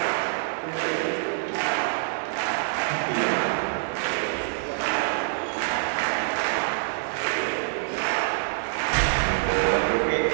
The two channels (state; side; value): silent; left; digital silence